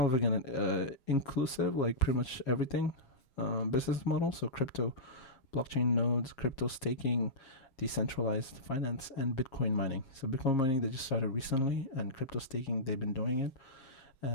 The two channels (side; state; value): right; late; 7.4 ms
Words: of again inclusive, like pretty much everything business model. So crypto, blockchain nodes, crypto staking, decentralized finance, and Bitcoin mining. So Bitcoin mining, they just started recently, and crypto staking, they've been doing it.